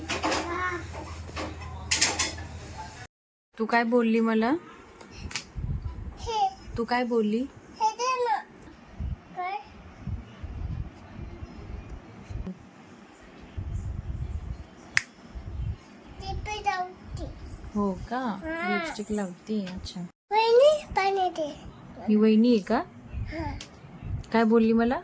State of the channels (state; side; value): identical; both; correlation 1.00